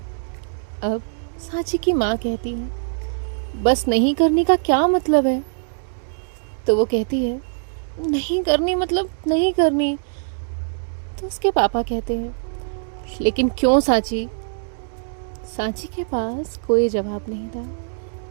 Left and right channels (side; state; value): left; silent; digital silence